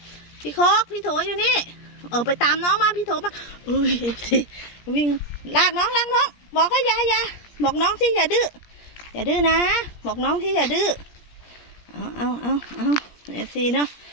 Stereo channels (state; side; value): late; right; 17 ms